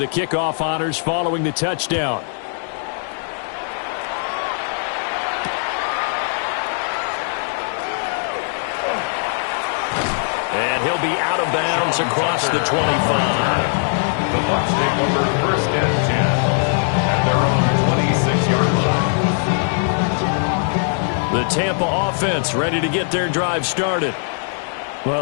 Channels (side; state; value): right; silent; digital silence